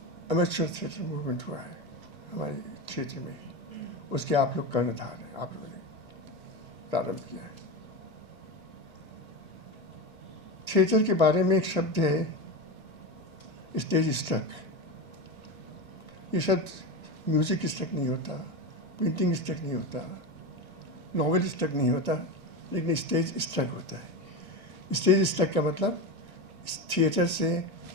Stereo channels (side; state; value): both; normal; correlation 0.20